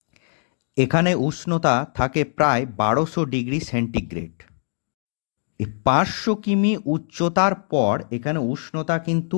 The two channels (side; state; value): right; silent; digital silence